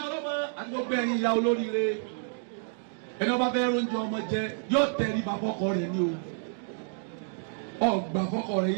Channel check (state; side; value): silent; left; digital silence